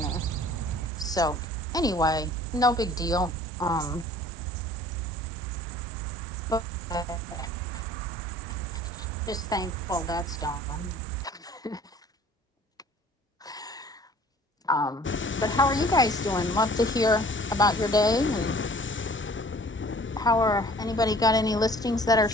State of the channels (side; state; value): both; normal; correlation 0.51